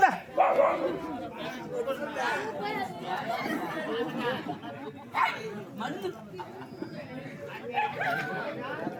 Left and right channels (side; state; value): both; identical; correlation 1.00